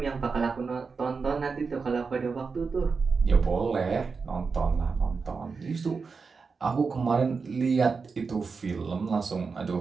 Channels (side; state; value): left; quieter; 4.9 dB